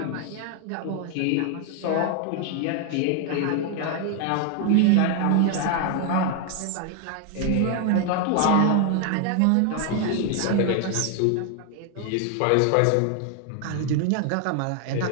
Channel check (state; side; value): different; both; correlation 0.00